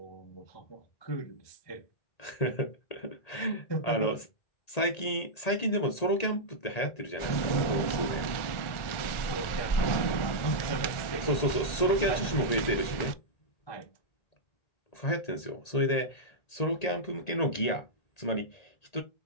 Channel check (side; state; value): right; late; 1.8 ms